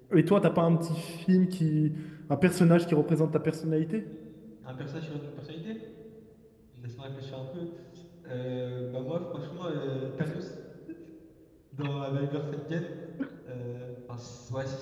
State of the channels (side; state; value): both; identical; correlation 1.00